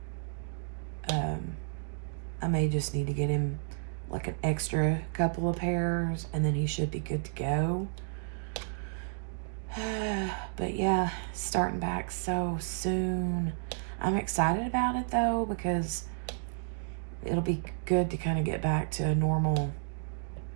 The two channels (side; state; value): left; silent; digital silence